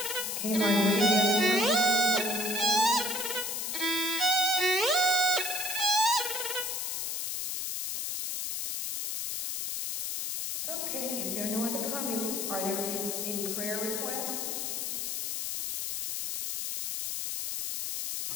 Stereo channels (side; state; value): left; noise; hiss, 2 dB below the sound